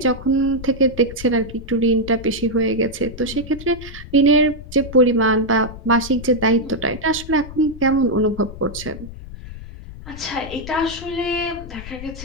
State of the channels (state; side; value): noise; left; rumble, 13 dB below the sound